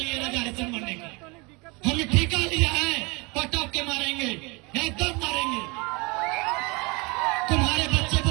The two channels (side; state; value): left; quieter; 27.6 dB